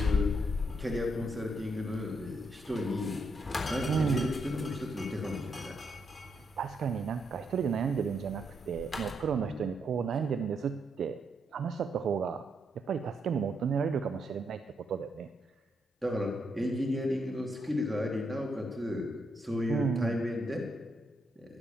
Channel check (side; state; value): both; normal; correlation 0.78